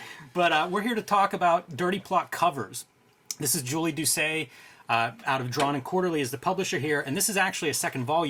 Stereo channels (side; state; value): both; identical; correlation 1.00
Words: But we're here to talk about Dirty Plot covers. This is Julie Doucet, out of Drawn and Quarterly, is the publisher here, and this is actually a second